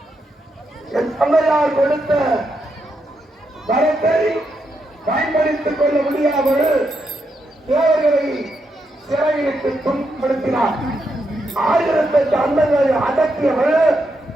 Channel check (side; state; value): both; normal; correlation 0.82